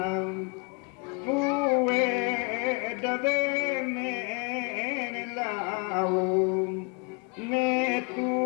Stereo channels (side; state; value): right; quieter; 33.5 dB